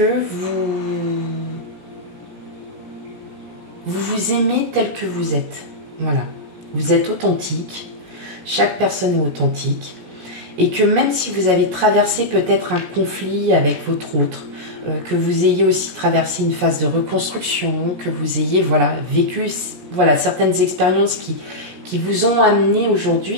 vous aimez tel que vous êtes. Voilà, vous êtes authentique, chaque personne est authentique. Et que même si vous avez traversé peut-être un conflit avec votre autre, que vous ayez aussi traversé une phase de reconstruction, que vous ayez voilà, vécu voilà, certaines expériences qui vous ont amené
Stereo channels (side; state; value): left; late; 17 ms